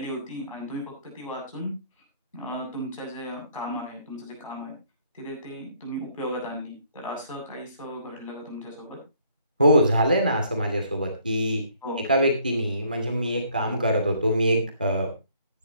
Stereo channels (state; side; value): inverted; both; correlation -0.64